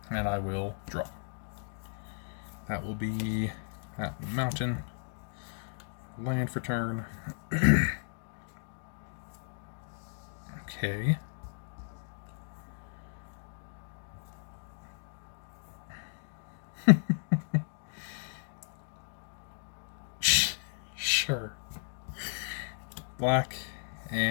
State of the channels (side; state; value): right; silent; digital silence